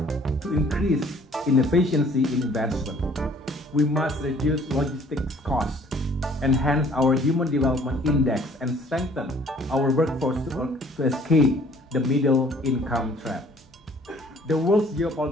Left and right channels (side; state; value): both; normal; correlation 0.56